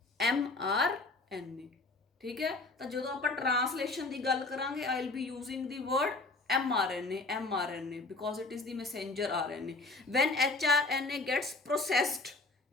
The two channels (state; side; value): quieter; right; 3.3 dB